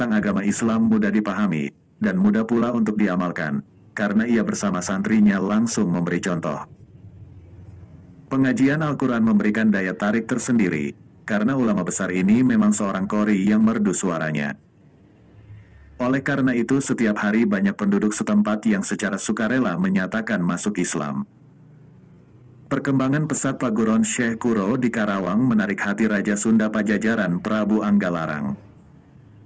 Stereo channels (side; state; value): both; identical; correlation 1.00